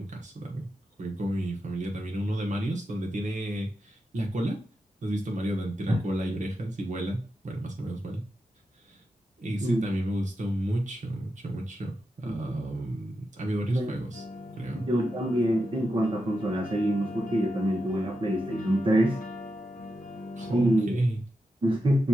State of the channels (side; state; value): both; normal; correlation 0.88